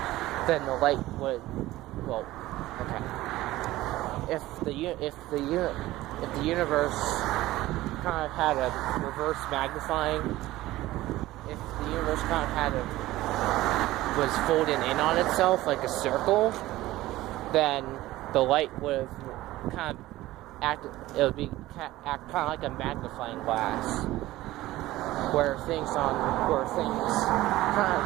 the light would, if the universe kind of had a reverse magnifying, if the universe kind of was folded in on itself like a circle, then the light would have kind of act kind of like a magnifying glass, where things kind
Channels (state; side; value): quieter; left; 16.8 dB